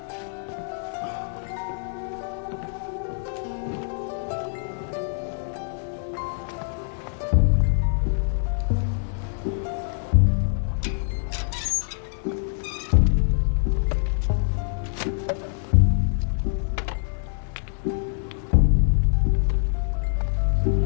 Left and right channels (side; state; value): right; silent; 62 dB below the other